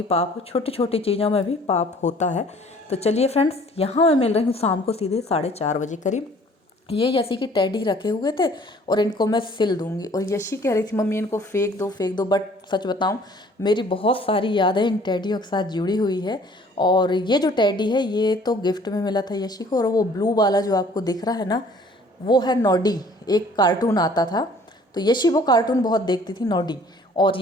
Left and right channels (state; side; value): normal; both; correlation 0.54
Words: पाप हो, छोटी छोटी चीज़ों में भी पाप होता है। तो चलिए फ्रेंड्स, यहाँ मैं मिल रही हूँ शाम को सीधे 4:30 बजे करीब। ये यशी की टेडी रखे हुए थे, और इनको मैं सिल दूंगी। और यशी कह रही थी मम्मी इनको फेंक दो फेंक दो, बट सच बताऊं, मेरी बहुत सारी यादें इन टेडियों के साथ जुड़ी हुई है। और ये जो टेडी है ये तो गिफ्ट में मिला था यशी को, और वो ब्लू वाला जो आपको दिख रहा है ना, वो है नॉडी, एक कार्टून आता था। तो यशी वो कार्टून बहुत देखती थी, नॉडी। और